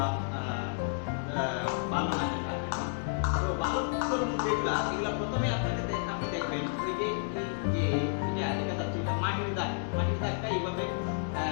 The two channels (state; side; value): silent; right; digital silence